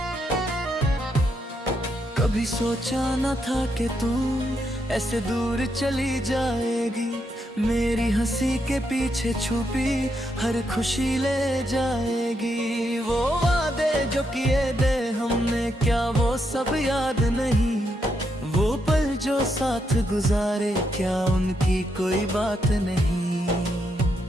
कभी सोचा न था कि तू ऐसे दूर चली जाएगी, मेरी हंसी के पीछे छुपी हर खुशी ले जाएगी। वो वादे जो किए थे हमने क्या वो सब याद नहीं, वो पल जो साथ गुजारे क्या उनकी कोई बात नहीं।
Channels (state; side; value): normal; both; correlation 0.80